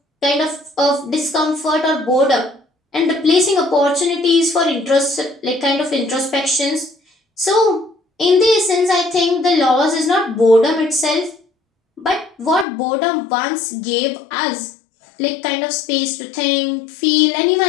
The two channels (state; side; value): drops out; right; at 12.7 s